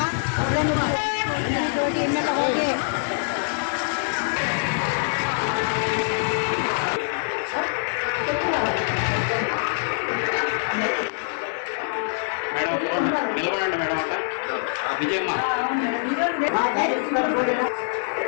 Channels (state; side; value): silent; right; 62 dB below the other